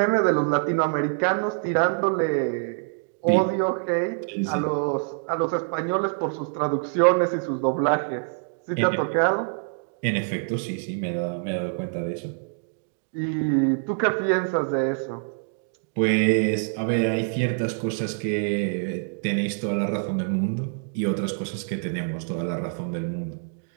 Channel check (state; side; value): silent; left; digital silence